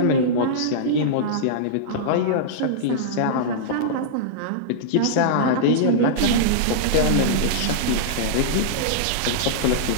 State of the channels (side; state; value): both; different; correlation -0.03